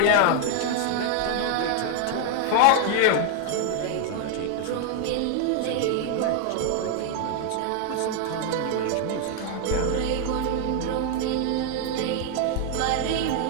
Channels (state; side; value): different; both; correlation 0.00